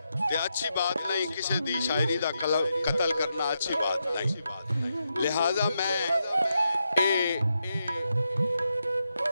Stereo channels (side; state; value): both; inverted; correlation -0.84